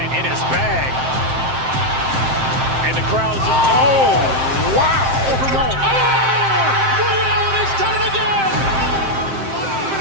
in his bag. And the crowd's, oh, wow. Liddell has done it again.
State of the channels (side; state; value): left; late; 7.6 ms